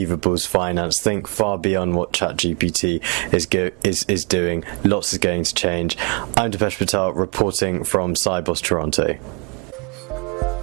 finance. Think far beyond what ChatGPT is doing. Lots is going to change. I'm Ravesh Patel, reporting from Sibos Toronto.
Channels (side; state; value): left; quieter; 33.9 dB